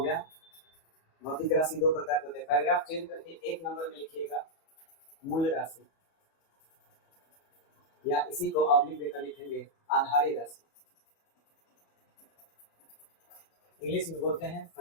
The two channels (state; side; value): late; right; 34 ms